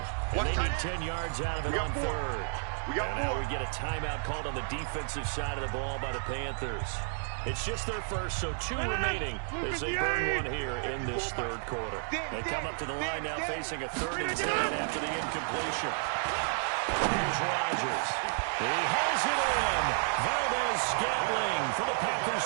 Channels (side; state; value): left; silent; 57 dB below the other